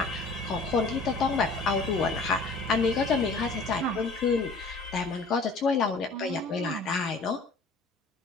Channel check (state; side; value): quieter; right; 3.6 dB